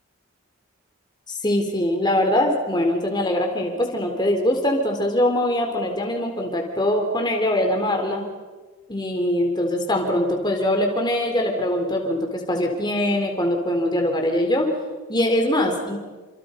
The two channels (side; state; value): both; normal; correlation 0.47